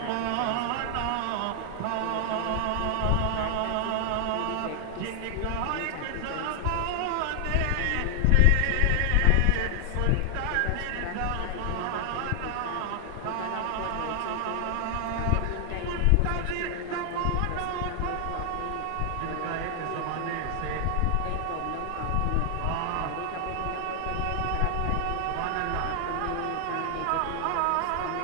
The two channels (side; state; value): both; different; correlation 0.00